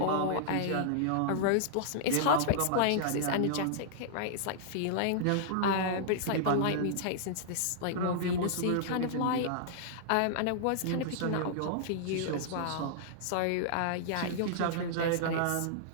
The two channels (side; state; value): both; different; correlation -0.01